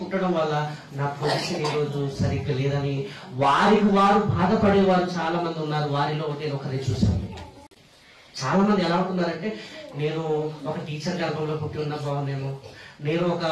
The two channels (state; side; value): identical; both; correlation 1.00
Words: పుట్టడం వల్ల నా పొజిషన్ ఈరోజు సరిగ్గా లేదని వారికి వారు బాధపడేవారు చాలా మంది ఉన్నారు. వారిలో నేను ఒకరే చూశాను. చాలా మంది ఎలా ఉంటున్నారంటే, నేను ఒక టీచర్ గర్భంలో పుట్టి ఉన్నా బాగుండేమో, నేను ఒక